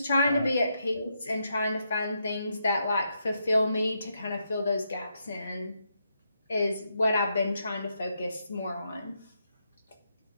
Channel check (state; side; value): inverted; both; correlation -0.81